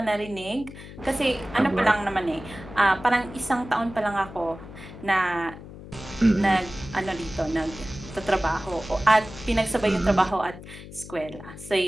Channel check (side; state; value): left; noise; hum, 15 dB below the sound